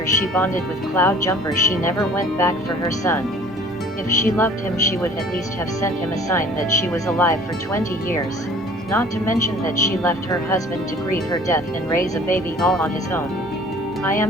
she bonded with Cloud Jumper she never went back for her son. If she loved him, she would at least have sent him a sign that she was alive for 20 years. Not to mention that she left her husband to grieve her death and raise a baby all on his own. I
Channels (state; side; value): normal; both; correlation 0.51